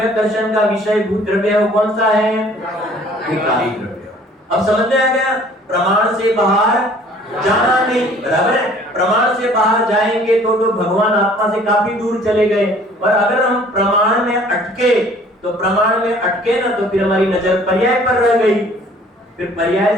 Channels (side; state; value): both; normal; correlation 0.54